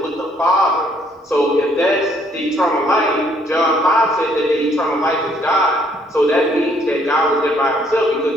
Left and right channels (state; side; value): normal; both; correlation 0.66